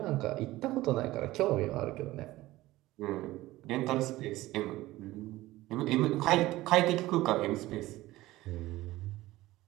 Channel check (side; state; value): left; quieter; 17.5 dB